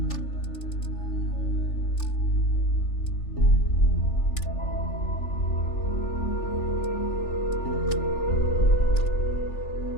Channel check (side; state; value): right; late; 3.4 ms